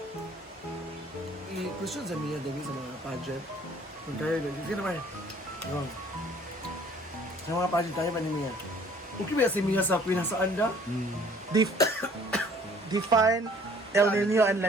I-question sa Mia, David, sa mga pageant. Kung tayo, sige naman. Go. Sa mga pageant tayo ba ni Mia? Okay ba si Mia sa Queen sa Anda? Define El Nino and La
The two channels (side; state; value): both; normal; correlation 0.56